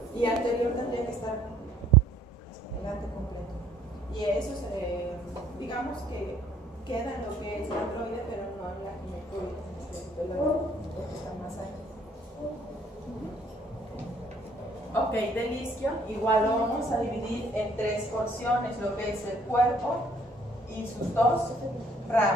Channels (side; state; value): both; normal; correlation 0.61